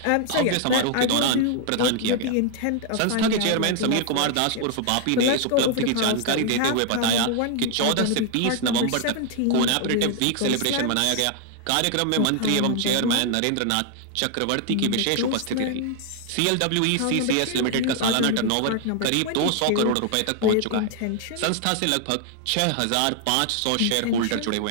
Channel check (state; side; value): different; both; correlation 0.00